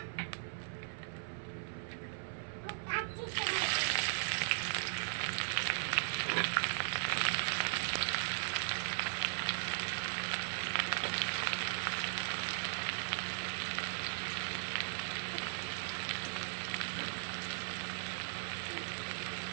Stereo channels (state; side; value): silent; left; 52 dB below the other